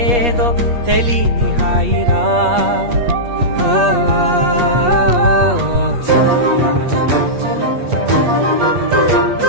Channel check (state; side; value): late; left; 8.4 ms